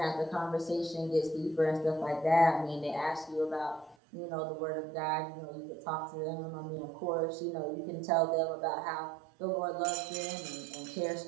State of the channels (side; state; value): left; drops out; at 4.0 s